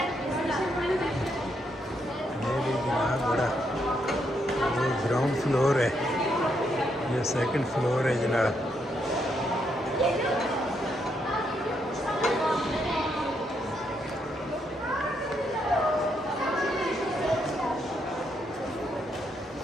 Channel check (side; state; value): both; normal; correlation 0.77